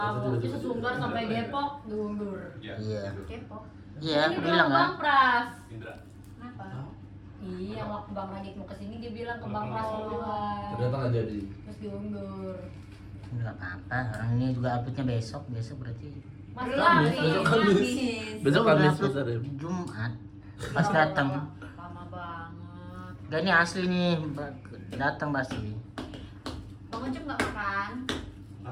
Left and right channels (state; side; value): identical; both; correlation 1.00